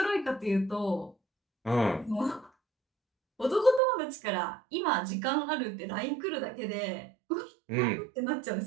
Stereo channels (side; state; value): left; drops out; at 3.8 s